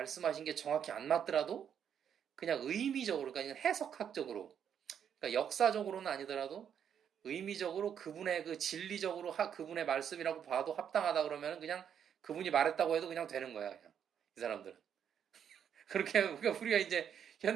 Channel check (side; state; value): left; quieter; 8.5 dB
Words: 게 정확히 안 맞더라도 그냥 의미적으로 그러니까 해석학적으로 그러니까 역사적으로는 아니더라도 의미적으로 그분의 그 진리적으로 그분의 말씀이라고 봐도 합당하다 그러면 그냥 그분이 말했다고 해도 그냥 되는 거야 그냥 이 사람들은 그렇게 그러니까 우리가 이제